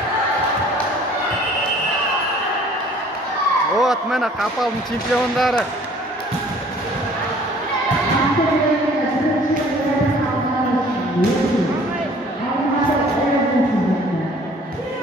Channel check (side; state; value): both; normal; correlation 0.53